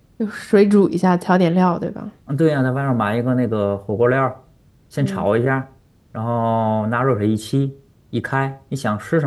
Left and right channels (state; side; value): identical; both; correlation 1.00